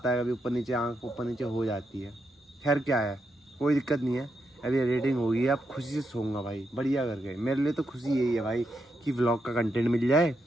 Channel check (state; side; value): normal; both; correlation 0.83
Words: है, कभी ऊपर नीचे आँख ऊपर नीचे हो जाती है। खैर क्या है, कोई दिक्कत नहीं है। अभी एडिटिंग होगी, अब खुशी से सोऊंगा भाई बढ़िया करके। मेरे लिए तो खुशी यही है भाई कि व्लॉग का कंटेंट मिल जाए